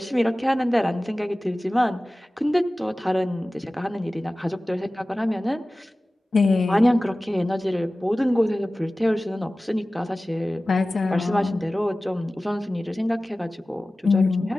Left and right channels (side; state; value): both; normal; correlation 0.97